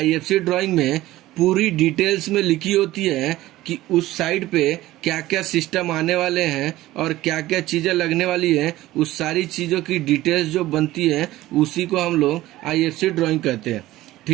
ड्राइंग में पूरी डिटेल्स में लिखी होती है कि उस साइट पे क्या क्या सिस्टम आने वाले हैं और क्या क्या चीजें लगने वाली है। उस सारी चीजों की डिटेल्स जो बनती है उसी को हम लोग IFC ड्राइंग कहते हैं,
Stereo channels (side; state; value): left; quieter; 16.4 dB